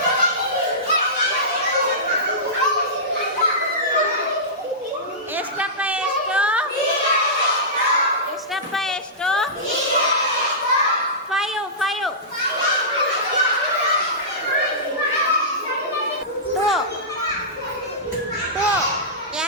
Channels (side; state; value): both; normal; correlation -0.17